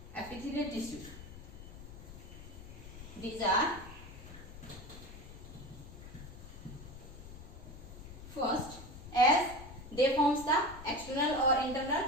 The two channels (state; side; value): noise; left; rumble, 14 dB below the sound